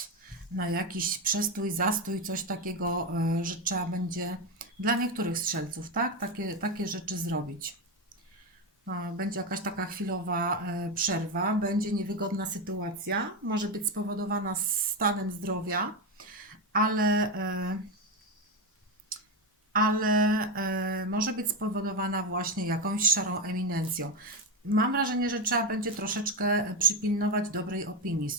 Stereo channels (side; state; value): both; normal; correlation 0.11